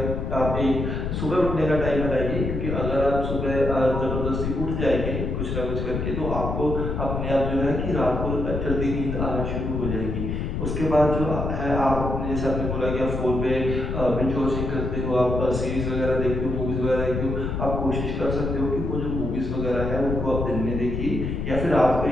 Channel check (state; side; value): noise; left; rumble, 2 dB below the sound